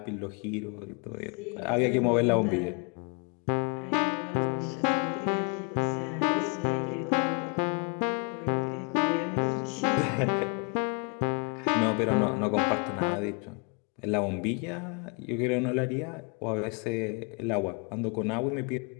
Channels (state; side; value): quieter; right; 35.0 dB